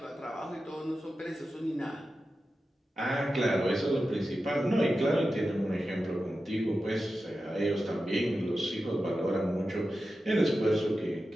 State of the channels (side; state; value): both; normal; correlation 0.92